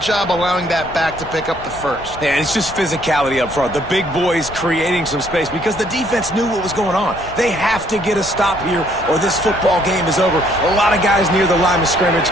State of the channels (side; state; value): left; noise; rumble, 16 dB below the sound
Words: job allowing that back to pick up the first. Yeah, it's just physicality up front. The big boys creating some space because the defense knew what was going on. They have to get a stop here or this football game is over. A lot of guys near the line of scrimmage,